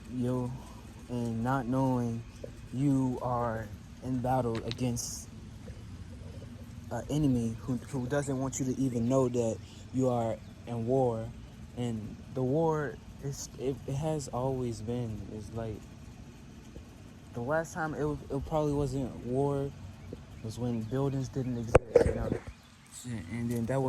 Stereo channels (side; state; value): both; identical; correlation 1.00